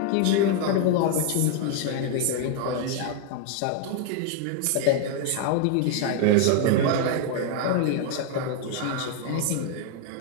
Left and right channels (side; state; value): both; different; correlation 0.00